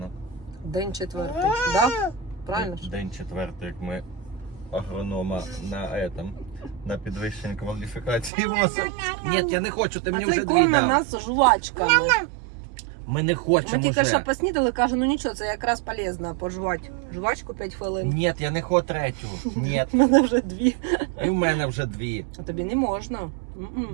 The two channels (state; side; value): drops out; left; at 8.3 s